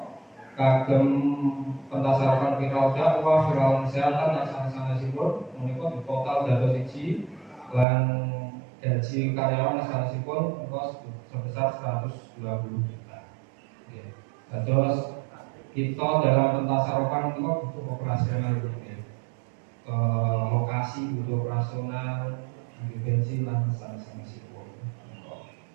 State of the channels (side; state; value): left; drops out; at 7.9 s